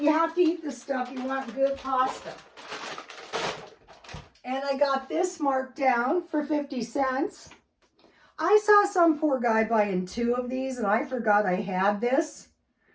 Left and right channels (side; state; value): both; identical; correlation 1.00